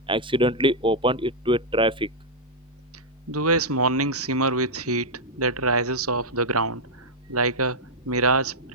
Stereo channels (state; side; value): normal; both; correlation -0.05